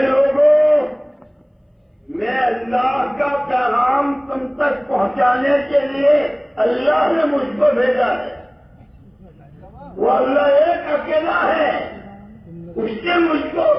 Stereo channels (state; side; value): identical; both; correlation 1.00